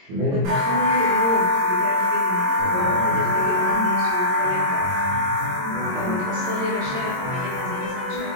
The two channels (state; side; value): late; left; 22 ms